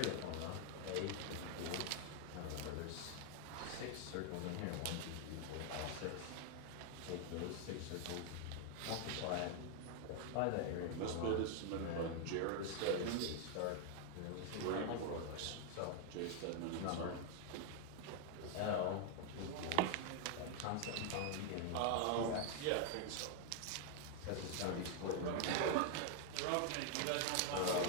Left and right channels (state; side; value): different; both; correlation 0.00